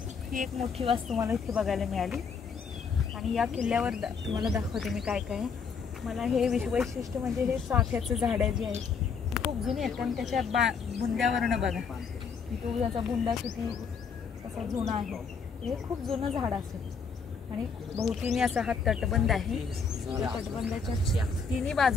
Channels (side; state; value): right; quieter; 5.7 dB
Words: ही एक मोठी वास्तू मला इथे बघायला मिळाली। आणि या किल्ल्यावर तुम्हाला दाखवते मी काय काय। मला हे वैशिष्ट्य म्हणजे हे चाफ्याचं झाड जे आहे खूप जुनी आहेत, कारण त्याच्या बुंद्यावरनं बघा तो त्याचा बुंदा किती असा जुना आहे। हे खूप जुनं झाड असेल। आणि भोवतीने असा हा तटबंद आहे। तटबंदाच्या तिन्ही